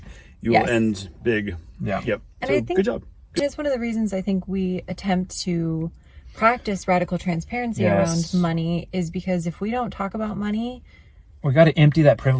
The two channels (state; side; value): identical; both; correlation 1.00